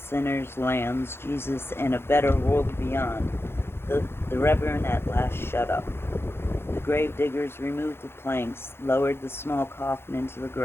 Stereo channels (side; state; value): right; late; 0.11 ms